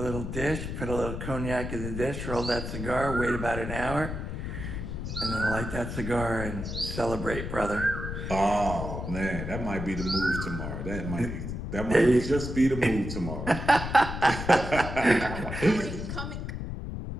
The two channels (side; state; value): left; noise; rumble, 5 dB below the sound